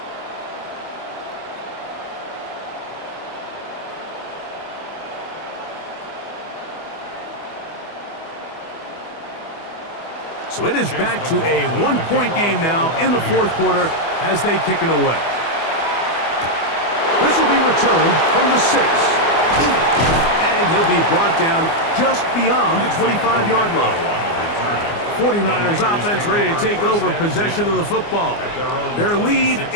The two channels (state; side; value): late; right; 24 ms